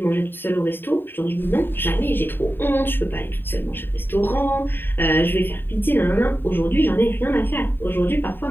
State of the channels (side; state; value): right; late; 0.098 ms